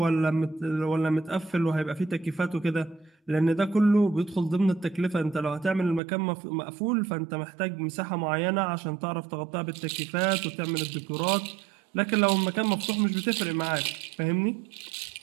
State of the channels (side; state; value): left; drops out; at 6.0 s